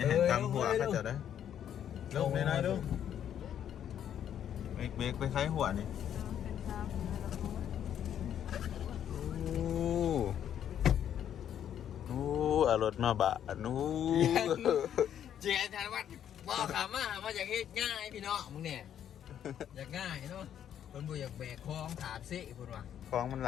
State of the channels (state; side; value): quieter; right; 9.8 dB